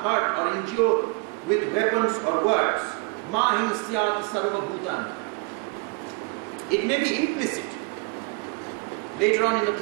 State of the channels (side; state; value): left; quieter; 31.5 dB